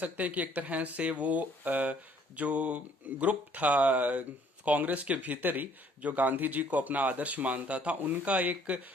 हैं कि एक तरह से वो जो ग्रुप था कांग्रेस के भीतर ही जो गांधी जी को अपना आदर्श मानता था, उनका एक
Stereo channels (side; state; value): both; normal; correlation 0.60